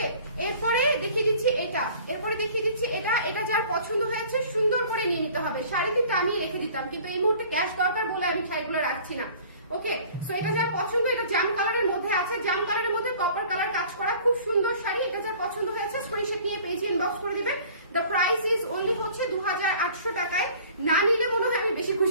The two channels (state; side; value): inverted; both; correlation -0.49